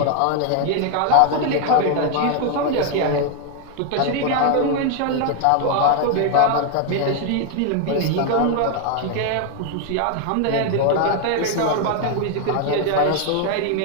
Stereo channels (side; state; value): both; different; correlation 0.00